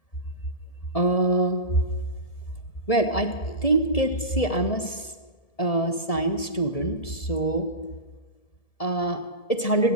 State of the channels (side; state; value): right; late; 1.7 ms